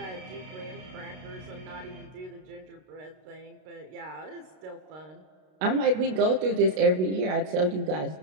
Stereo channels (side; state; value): left; late; 32 ms